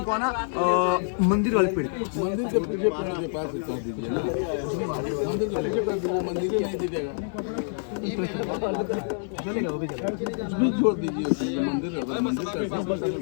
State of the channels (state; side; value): silent; right; 60 dB below the other